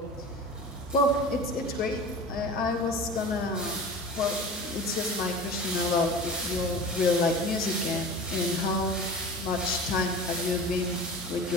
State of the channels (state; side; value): normal; both; correlation 0.36